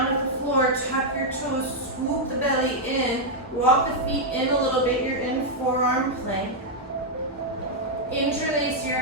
at the floor, tuck your toes, swoop the belly in, walk the feet in a little bit, you're in forearm plank. Interlace your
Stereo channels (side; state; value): both; normal; correlation -0.03